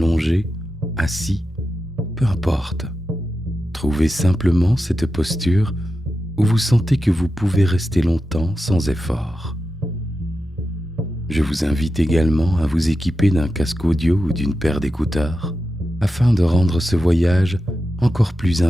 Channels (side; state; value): both; normal; correlation 0.90